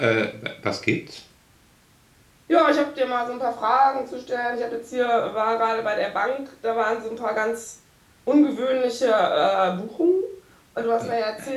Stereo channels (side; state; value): both; identical; correlation 1.00